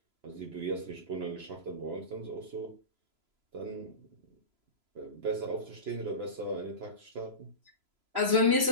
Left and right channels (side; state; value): left; late; 3.0 ms